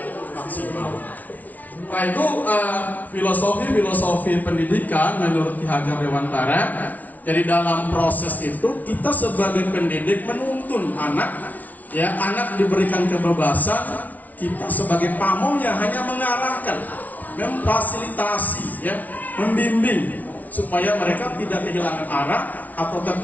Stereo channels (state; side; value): late; right; 0.075 ms